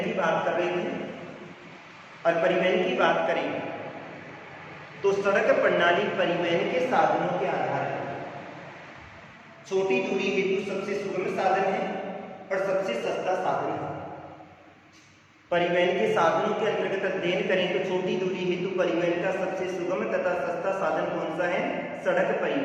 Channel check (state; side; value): identical; both; correlation 1.00